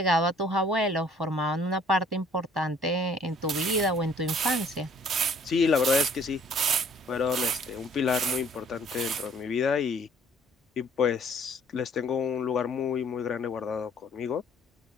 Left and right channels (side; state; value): both; normal; correlation 0.57